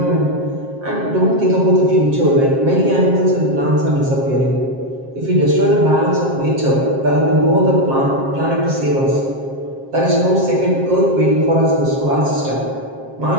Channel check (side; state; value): left; late; 7.5 ms